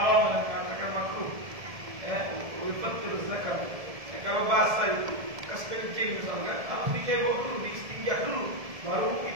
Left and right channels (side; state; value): left; late; 1.7 ms